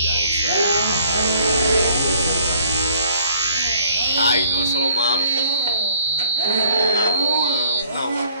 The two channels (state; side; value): inverted; both; correlation -0.59